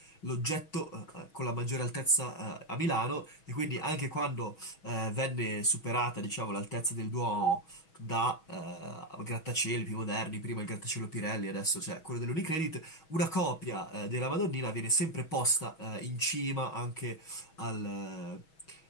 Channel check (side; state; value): right; late; 6.2 ms